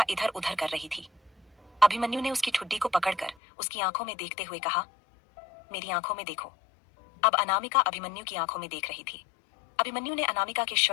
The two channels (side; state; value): right; drops out; at 3.4 s